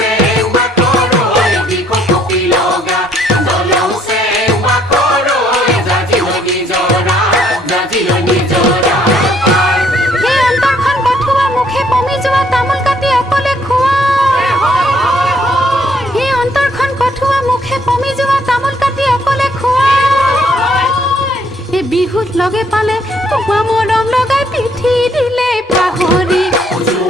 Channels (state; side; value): normal; both; correlation 0.66